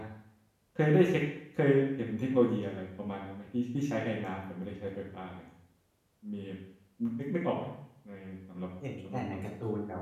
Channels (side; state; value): both; identical; correlation 1.00